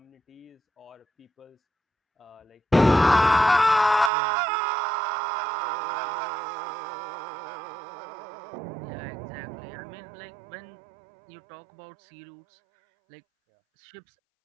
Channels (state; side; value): drops out; left; at 4.1 s